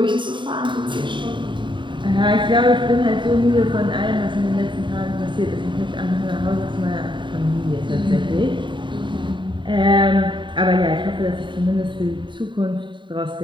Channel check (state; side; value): late; left; 0.23 ms